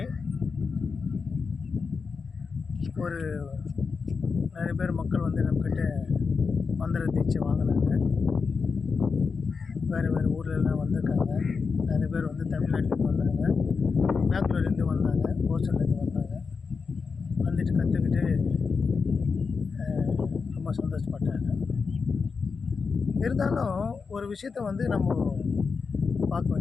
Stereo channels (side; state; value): right; quieter; 5.1 dB